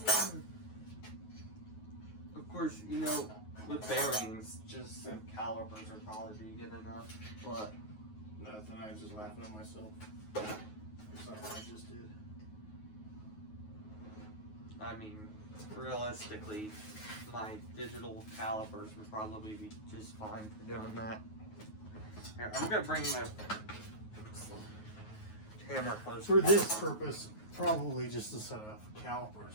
Of course, you know, with bearings, just some calipers would probably be good enough. But Nothing, I was just laughing at myself. Something I just did. I mean, realistically, my digital calipers would probably be just fine for doing that. Here, I'm gonna bring the camera closer. For this purpose, probably just a set of calipers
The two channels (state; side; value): late; right; 9.4 ms